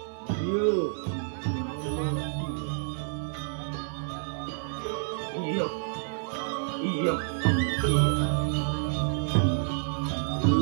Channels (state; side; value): silent; left; digital silence